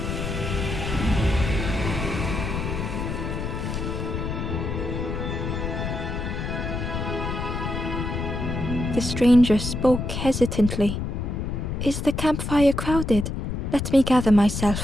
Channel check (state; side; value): noise; left; rumble, 3 dB below the sound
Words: The stranger spoke hesitantly. "Is the campfire crowded? Let me gather